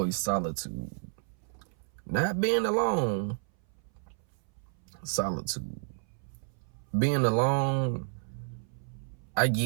solitude. Not being alone, solitude. Being alone, I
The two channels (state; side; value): silent; left; 57 dB below the other